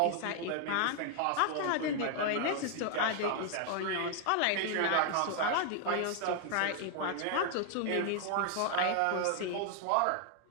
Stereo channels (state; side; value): different; both; correlation 0.00